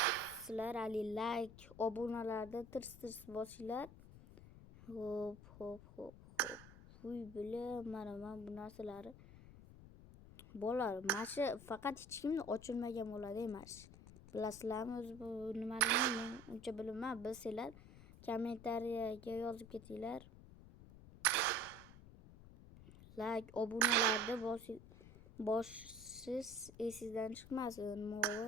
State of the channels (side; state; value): left; noise; rumble, 17 dB below the sound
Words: sizlar ali like, obunalarda tirs bosinglar. Hop. Uy, bilim, mana bu narsalarni. Bolalar, mana shu faqat hech kimni ochilmagan bo'ladi emas. Bilasizlarmi, o'zi bu nimaligini men uncha bilmayman. Bilsanglar kommentariyaga yozib ketinglar. Like, obunalarni bosish esingizdan chiqmasin.